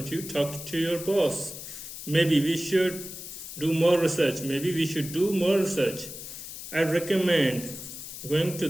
you talk to your boss? Maybe we should do more research. Maybe we should do more research. I'd recommend going to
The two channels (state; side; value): noise; left; hiss, 10 dB below the sound